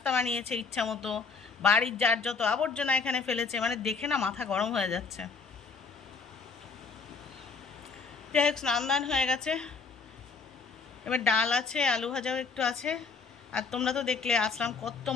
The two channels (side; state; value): right; quieter; 4.9 dB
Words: বানিয়েছে ইচ্ছা মতো, বাড়ির যার যত আবর্জনা এখানে ফেলেছে, মানে দেখে না মাথা গরম হয়ে যাচ্ছে। যাই হোক, স্নান দান হয়ে গেছে, এবার ডাল আছে, আলু ভাজাও একটু আছে। আর তোমরা তো দেখলে আসলাম কত